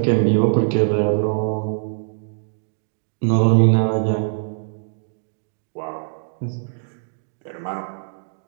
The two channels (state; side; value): silent; left; digital silence